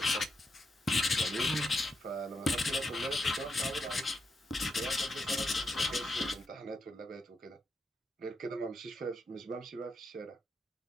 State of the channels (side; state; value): both; normal; correlation 0.82